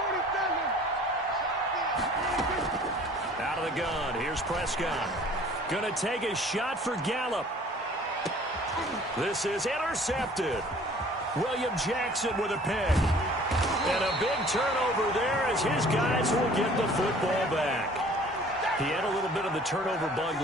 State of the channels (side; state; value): both; normal; correlation 0.51